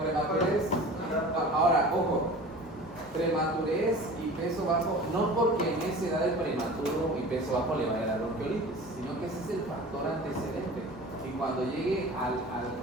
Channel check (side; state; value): both; normal; correlation 0.39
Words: Ahora, ojo. Prematurez y peso bajo, no porque en esa edad el prematuro y peso bajo le vaya a dar bronquiolitis, sino que ese es el factor antecedente. Y cuando llegue al